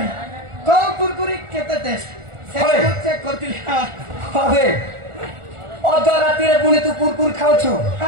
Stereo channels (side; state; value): left; late; 1.4 ms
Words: को कुरकुरी केते टेस्ट चेक करतिली हबे अद रात्रि रे पुणी तू कुरकुरी खाउछु